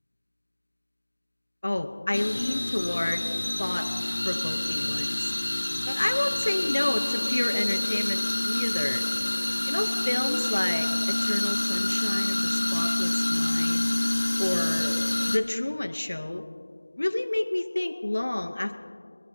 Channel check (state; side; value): inverted; both; correlation -1.00